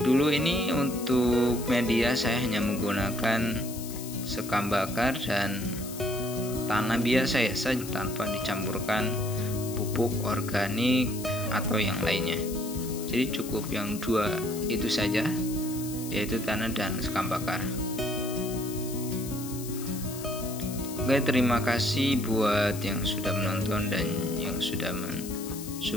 ini untuk media saya hanya menggunakan sekam bakar dan tanah biasa ya saja, tanpa dicampurkan pupuk organik atau yang lainnya. Jadi cukup yang 2 itu saja. yaitu tanah dan sekam bakar. Oke, terima kasih buat yang sudah menonton dan yang sudah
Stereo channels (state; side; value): noise; left; hiss, 12 dB below the sound